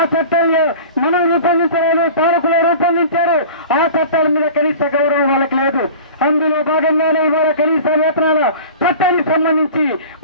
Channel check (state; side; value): inverted; both; correlation -0.39